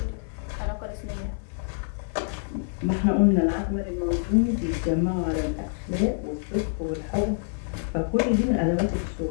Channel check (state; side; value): silent; right; 58 dB below the other